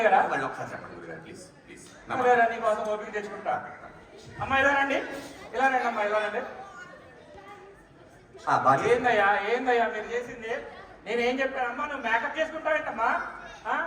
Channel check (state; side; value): identical; both; correlation 1.00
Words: అయ్యారా? మళ్ళీ ఒకసారి చెప్పండి గురుగారు ప్లీజ్ ప్లీజ్. సరేరా, నీ కోసం ఓపిక తెచ్చుకుంటా. అమ్మా ఇలా రండి, ఇలా రండి అమ్మా, ఇలా రండి. ఏందయ్యా మీరు చేసింది? నేను ఏం చెప్పానమ్మా, నువ్వు మేకప్ చేసుకుంటావేంటమ్మా?